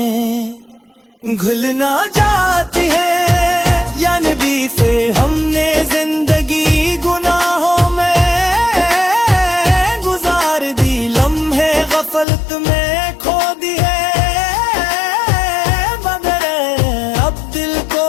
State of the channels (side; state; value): right; drops out; at 12.2 s